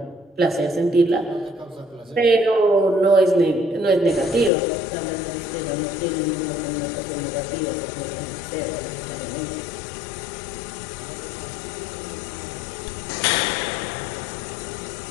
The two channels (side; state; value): right; drops out; at 4.5 s